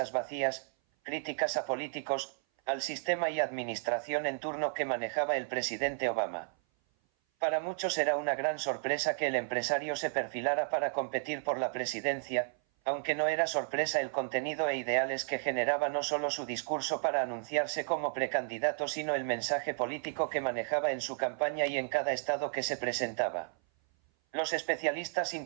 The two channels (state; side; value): silent; left; 56 dB below the other